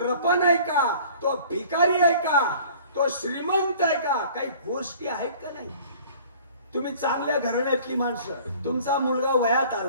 आहे का? तो भिकारी आहे का? तो श्रीमंत आहे का? काही गोष्टी आहेत का नाही? तुम्ही चांगल्या घराण्यातली माणसं, तुमचा मुलगा वयात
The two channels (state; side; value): inverted; both; correlation -0.49